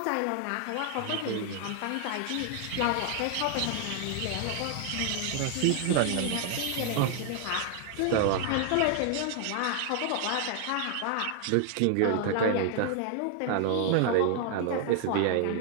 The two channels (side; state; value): both; different; correlation 0.00